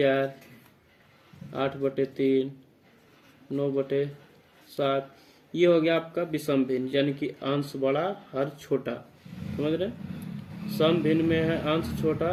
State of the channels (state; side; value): identical; both; correlation 1.00